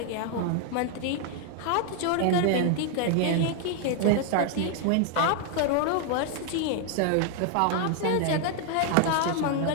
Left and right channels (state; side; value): different; both; correlation 0.00